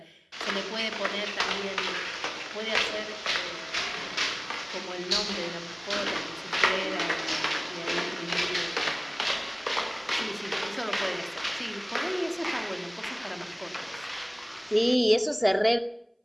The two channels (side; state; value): both; identical; correlation 1.00